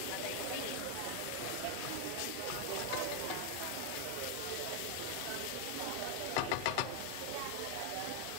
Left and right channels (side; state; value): both; different; correlation 0.00